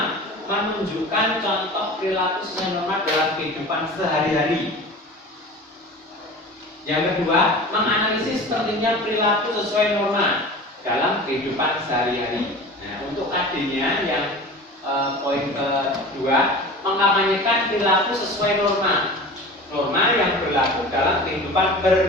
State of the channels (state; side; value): normal; both; correlation 0.37